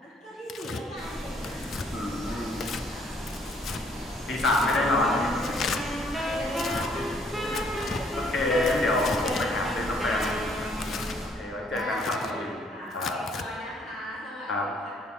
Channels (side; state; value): both; normal; correlation 0.64